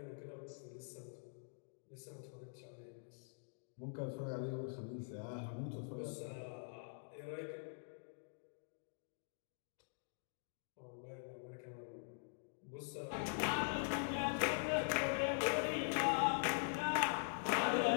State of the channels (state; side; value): silent; right; digital silence